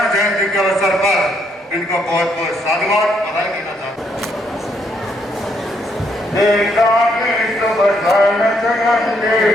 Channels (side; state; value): both; normal; correlation 0.73